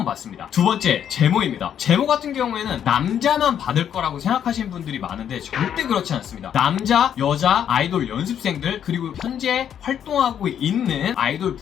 받습니다. 두 번째, 제모입니다. 제모 같은 경우에는 남자만 받을 거라고 생각하시는 분들이 많은데 절대 그렇지 않습니다. 남자, 여자, 아이돌 연습생들, 그리고 현재 활동하고 있는 아이돌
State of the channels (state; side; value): quieter; right; 9.2 dB